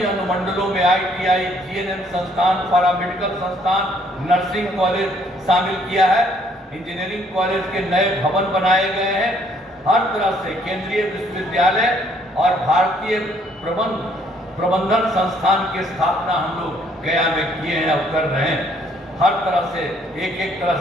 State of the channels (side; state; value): both; normal; correlation 0.64